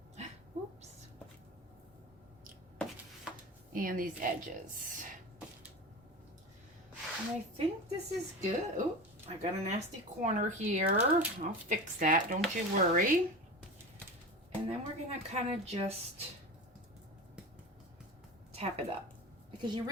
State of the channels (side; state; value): both; normal; correlation 0.29